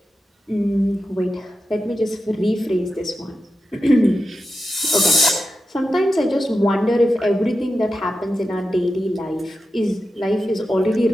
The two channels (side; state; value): both; normal; correlation 0.91